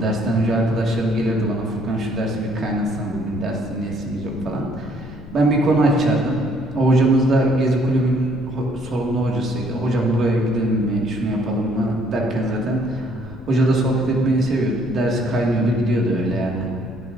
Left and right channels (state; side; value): noise; left; rumble, 16 dB below the sound